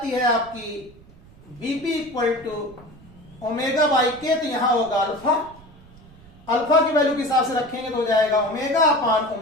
है आपकी Vp equal to omega by K, तो यहां होगा अल्फा। अल्फा की वैल्यू के हिसाब से रखेंगे तो हो जाएगा omega upon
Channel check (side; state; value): right; noise; rumble, 23 dB below the sound